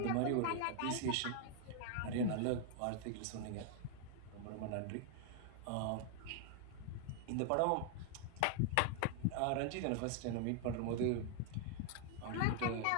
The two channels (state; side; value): different; both; correlation 0.00